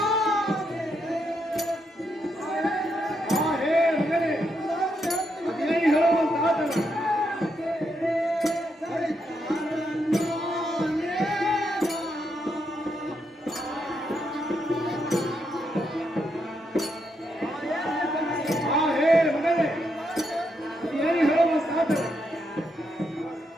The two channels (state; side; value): normal; both; correlation 0.80